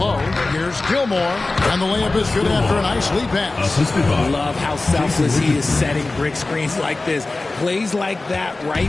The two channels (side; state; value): right; quieter; 3.2 dB